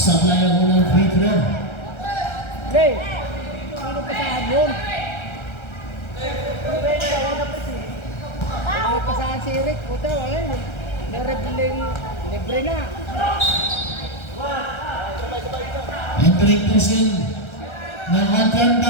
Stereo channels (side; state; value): right; late; 1.3 ms